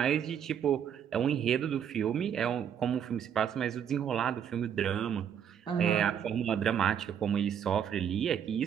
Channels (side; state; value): left; quieter; 8.6 dB